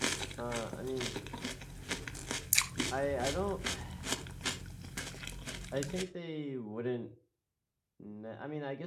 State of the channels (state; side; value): identical; both; correlation 1.00